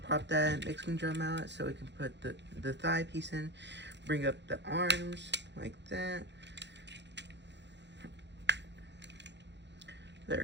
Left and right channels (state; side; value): late; left; 0.51 ms